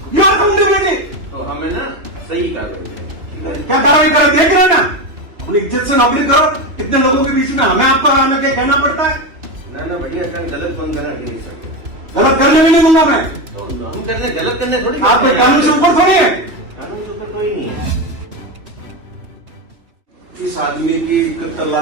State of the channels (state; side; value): late; left; 3.0 ms